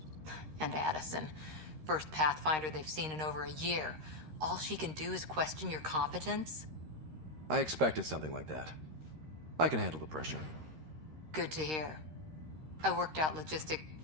And Addison. First Pathfinder they've seen in over a year. All she can do is question your competence? I expected something like that. I can handle the pressure. Good to hear. I worked out logistic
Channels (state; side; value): late; left; 13 ms